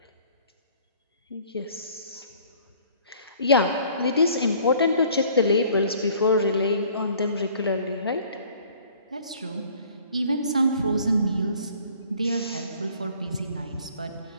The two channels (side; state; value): both; inverted; correlation -0.54